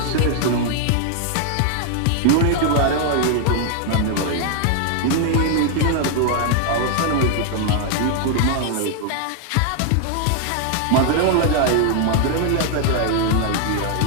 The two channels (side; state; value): both; different; correlation 0.00